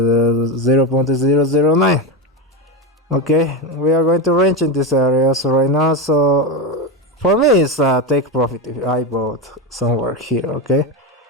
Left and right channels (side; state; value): both; normal; correlation 0.14